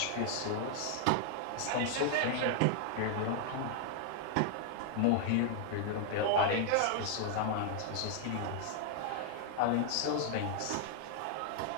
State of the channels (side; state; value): both; different; correlation 0.00